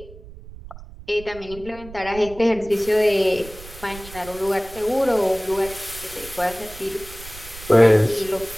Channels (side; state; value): right; noise; rumble, 16 dB below the sound